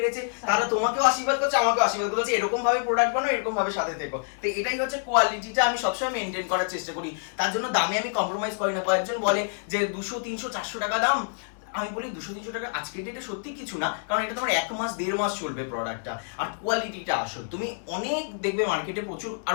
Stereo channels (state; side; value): silent; right; digital silence